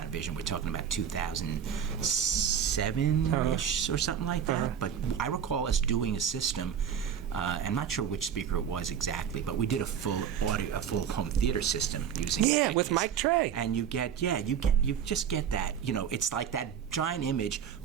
we're talking about 2007-ish or something like that, but I recall us doing a system, I'm not sure which speaker it was exactly, but we did a full home theater system using with Mike Trey. And you just get that, it's like that giant image,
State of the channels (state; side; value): quieter; left; 8.3 dB